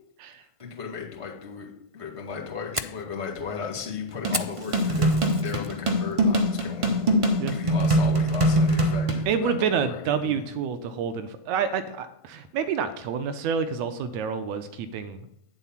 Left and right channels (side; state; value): left; late; 1.5 ms